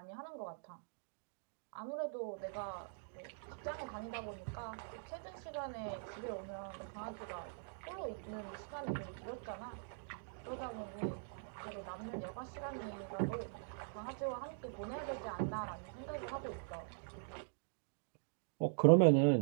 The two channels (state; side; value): silent; left; digital silence